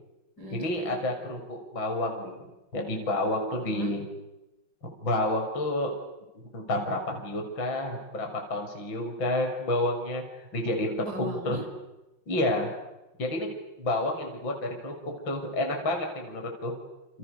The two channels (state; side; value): late; right; 5.6 ms